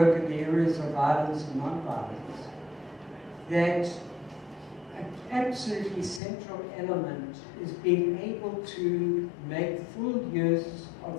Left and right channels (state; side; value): drops out; right; at 6.2 s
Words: in the areas of violence and non-violence that an absolutely central element is being able to make full use